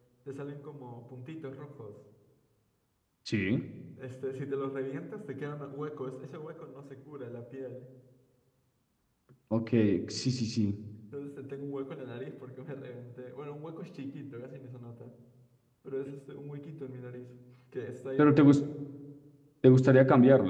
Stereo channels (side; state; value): both; identical; correlation 1.00